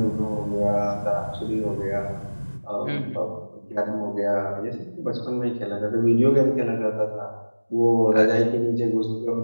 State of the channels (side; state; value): both; inverted; correlation -1.00